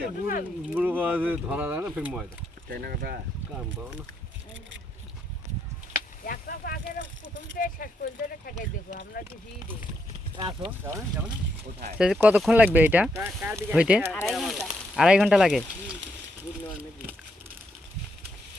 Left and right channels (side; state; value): both; normal; correlation 0.78